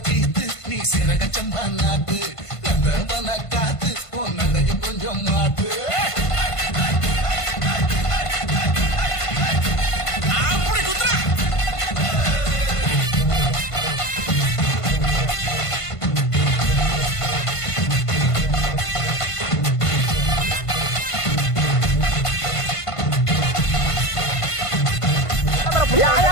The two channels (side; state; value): right; late; 1.5 ms